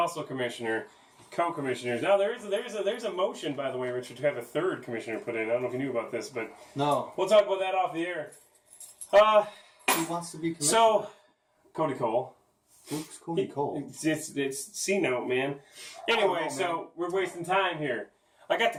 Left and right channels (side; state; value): both; identical; correlation 1.00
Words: Commissioner, co-commissioners. Now, there's a motion, by the way, Richard, to have a third commissioner put in. I don't know if you knew about this, but No. we'll talk about that off the air. Who wants to be commissioner? So, Cody Cole. Who's Cody Cole? It's C-note, man. Anyway, man. So we're wasting time here. I got